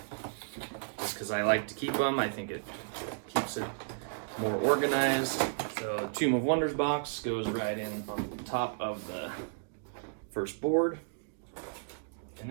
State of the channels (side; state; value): left; silent; digital silence